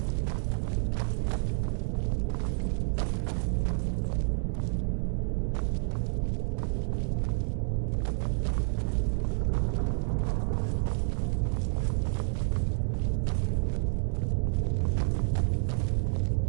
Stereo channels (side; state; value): left; silent; 58 dB below the other